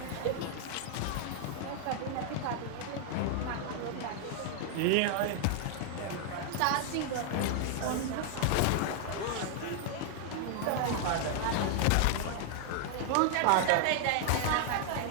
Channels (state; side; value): different; both; correlation 0.00